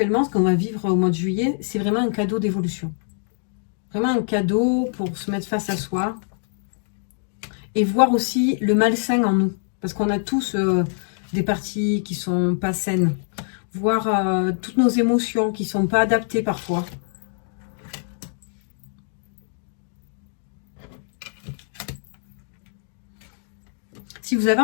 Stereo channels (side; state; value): right; silent; digital silence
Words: ce qu'on va vivre au mois de juillet, c'est vraiment un cadeau d'évolution. Vraiment un cadeau pour se mettre face à soi. et voir aussi le malsain en nous. Parce qu'on a tous des parties qui sont pas saines. Voir toutes nos émotions qui sont pas adaptées parfois. Si vous avez